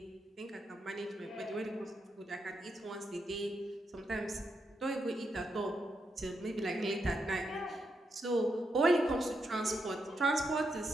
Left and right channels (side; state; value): both; normal; correlation 0.82